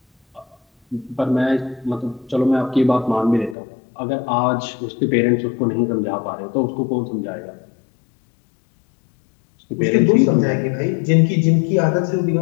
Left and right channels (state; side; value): drops out; right; at 3.6 s